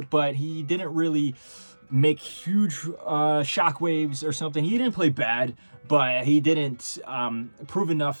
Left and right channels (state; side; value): inverted; both; correlation -1.00